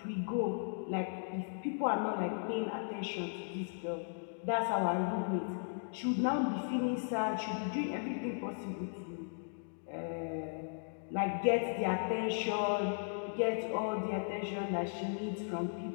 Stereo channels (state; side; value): silent; right; digital silence